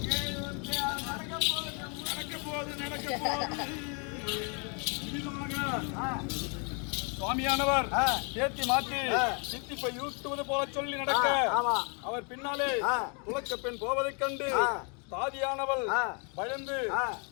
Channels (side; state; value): right; quieter; 36.5 dB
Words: சுவாமியானவர் தேத்தி மாற்றி சித்திப்பை யூட்டுவது போல சொல்லி நடக்க ஆமா. அவர் பின்னாலே ஆ. துலக்க பெண் போவதைக் கண்டு ஆ. தாதியானவள் ஆ. பயந்து ஆ.